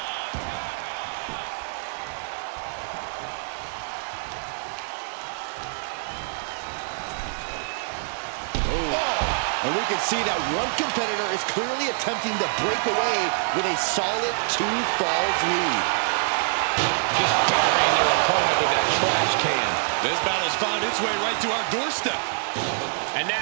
And we can see that one competitor is clearly attempting to break away with a solid 2 falls lead. Just burying their opponent with that trash can. This battle's found its way right to our doorstep. And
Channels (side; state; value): left; silent; digital silence